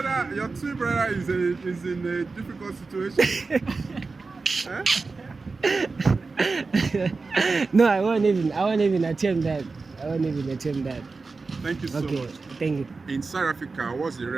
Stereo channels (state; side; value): quieter; left; 4.1 dB